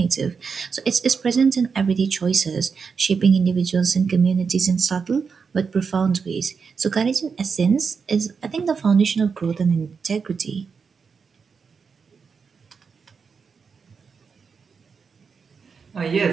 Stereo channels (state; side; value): quieter; left; 5.6 dB